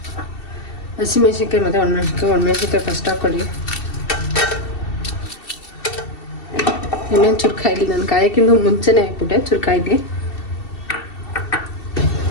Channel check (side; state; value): right; late; 2.7 ms